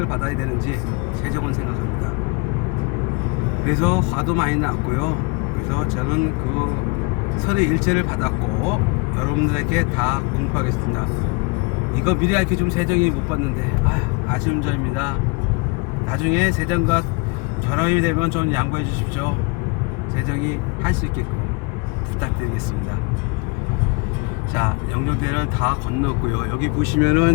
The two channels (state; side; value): quieter; right; 29.7 dB